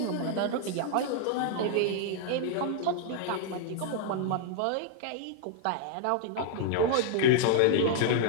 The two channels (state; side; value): different; both; correlation -0.01